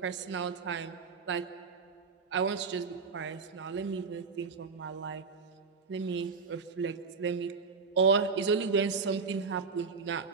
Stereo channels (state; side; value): quieter; left; 5.0 dB